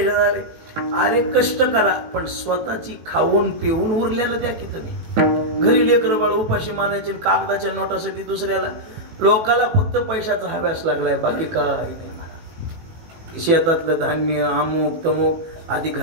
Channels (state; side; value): late; left; 18 ms